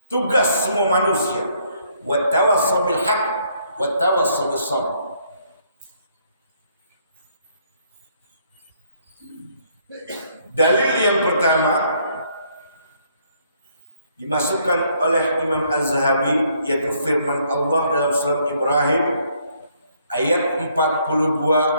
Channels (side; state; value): both; inverted; correlation -0.68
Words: Tugas semua manusia, wa tawassaw bil haqq wa tawassaw bis sabr. Dalil yang pertama dimasukkan oleh Imam Az-Zahabi, yaitu firman Allah dalam surat Ibrahim ayat